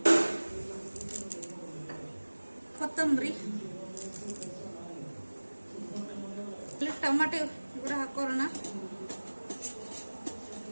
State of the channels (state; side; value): inverted; both; correlation -1.00